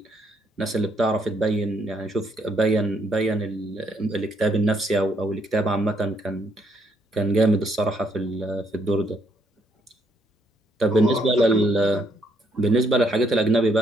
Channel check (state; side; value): normal; both; correlation 0.72